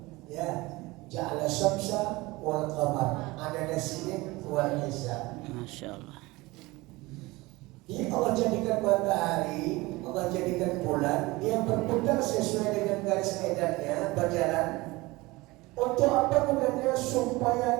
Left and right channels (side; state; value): left; quieter; 21.7 dB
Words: ya, ja'ala syamsa wal qamar, ada sinin wal hisab. Masya Allah. Jadi Allah jadikan matahari, Allah jadikan bulan, dia berputar sesuai dengan garis edarnya, berjalan. Untuk apa gunanya?